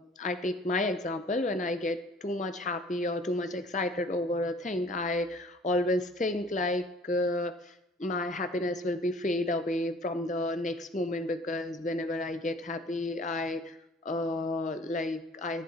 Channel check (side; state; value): both; normal; correlation 0.52